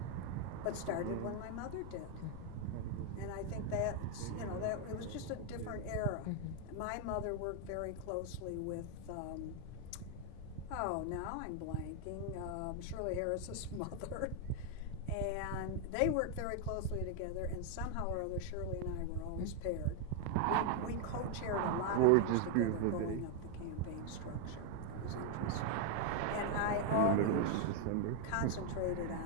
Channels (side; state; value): both; different; correlation 0.00